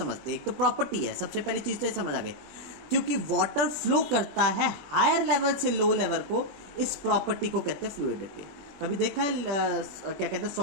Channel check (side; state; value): left; late; 21 ms